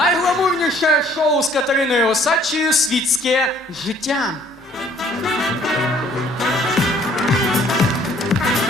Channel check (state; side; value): normal; both; correlation 0.59